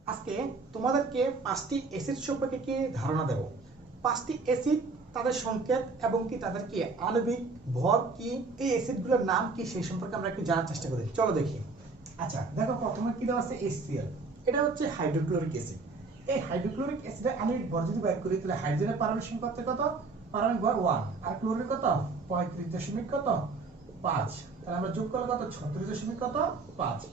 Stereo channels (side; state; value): left; quieter; 4.0 dB